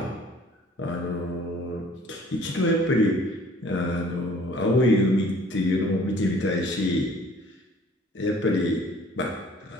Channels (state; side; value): normal; both; correlation 0.53